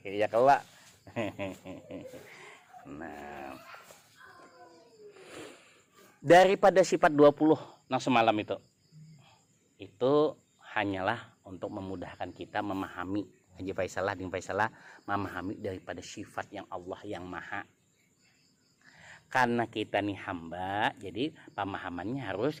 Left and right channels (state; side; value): identical; both; correlation 1.00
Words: Ya kelak. Nah, daripada sifat 20 yang semalam itu hanyalah untuk memudahkan kita memahami. Haji Faisalah dengan Faisalah memahami daripada sifat yang Allah yang maha. Karena kita nih hamba, jadi pemahamannya harus